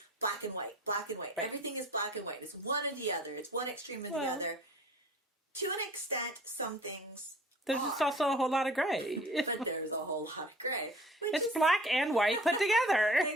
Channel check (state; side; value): normal; both; correlation 0.48